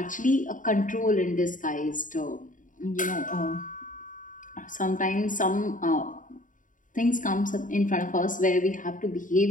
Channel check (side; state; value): right; late; 0.38 ms